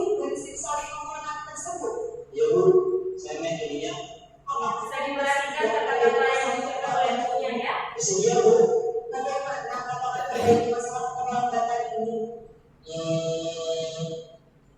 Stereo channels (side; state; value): both; identical; correlation 1.00